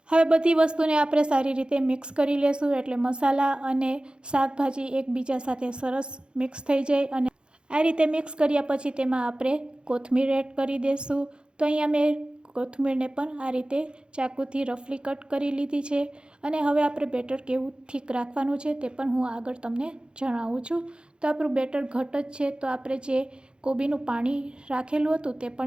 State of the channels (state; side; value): late; left; 0.052 ms